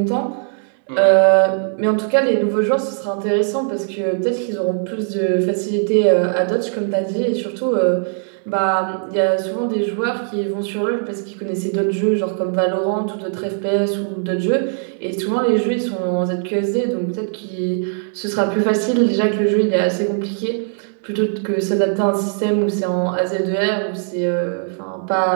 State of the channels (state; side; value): silent; left; 66 dB below the other